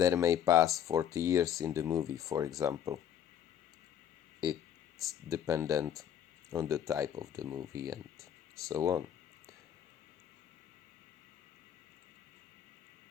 may pass 40 years in the movie, for example. It's dependent on the type of the movie and so on.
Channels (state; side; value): quieter; right; 9.7 dB